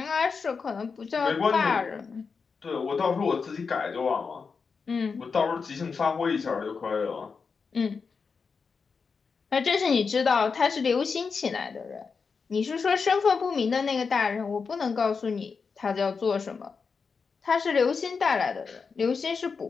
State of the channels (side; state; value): right; quieter; 5.2 dB